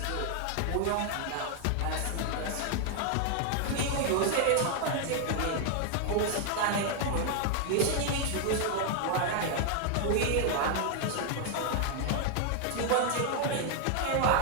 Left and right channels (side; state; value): both; different; correlation 0.00